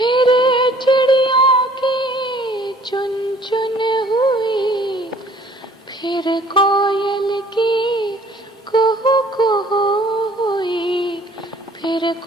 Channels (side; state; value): both; normal; correlation 0.55